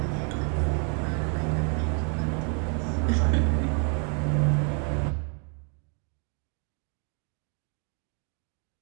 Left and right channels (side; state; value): left; quieter; 38.7 dB